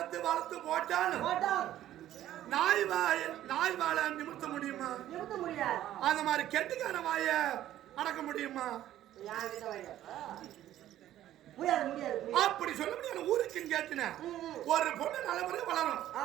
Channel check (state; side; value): quieter; left; 12.8 dB